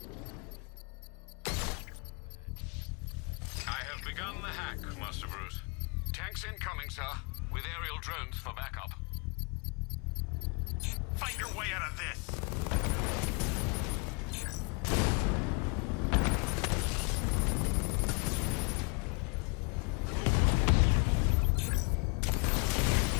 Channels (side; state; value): right; quieter; 33.4 dB